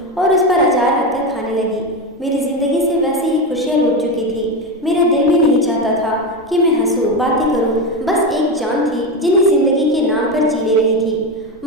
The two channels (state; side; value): normal; both; correlation 0.16